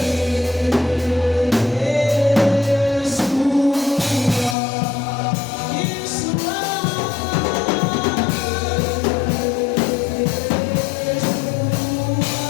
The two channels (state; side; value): drops out; right; at 4.5 s